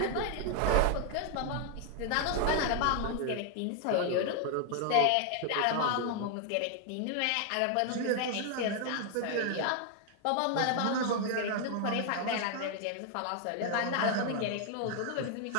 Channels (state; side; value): different; both; correlation 0.00